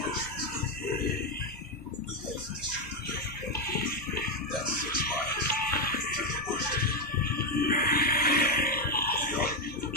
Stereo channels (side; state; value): both; normal; correlation 0.06